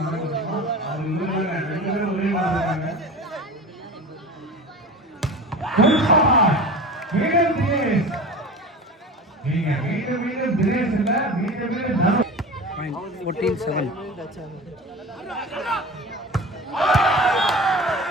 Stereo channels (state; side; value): normal; both; correlation 0.33